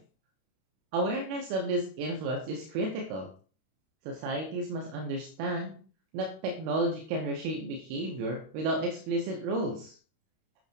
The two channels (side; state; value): left; late; 32 ms